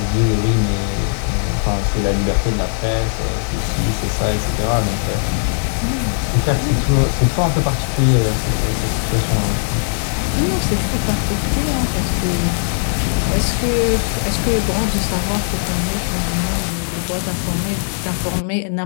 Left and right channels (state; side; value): silent; right; digital silence